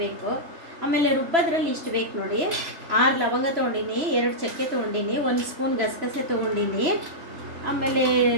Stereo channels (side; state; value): left; late; 3.0 ms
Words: ಬೇಕು. ಆಮೇಲೆ ರುಬ್ಬೋದ್ರಲ್ಲಿ ಇಷ್ಟು ಬೇಕು ನೋಡಿ. 6 ಲವಂಗ ತೊಗೊಂಡಿನಿ, 2 ಚಕ್ಕೆ ತೊಗೊಂಡಿನಿ, 1 ಸ್ಪೂನ್ ಗಸಗಸೆ ತೊಗೊಂಡಿನಿ, ಆಮೇಲೆ